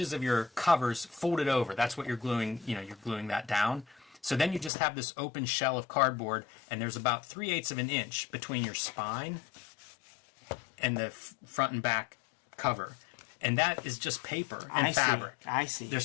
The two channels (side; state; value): right; drops out; at 4.7 s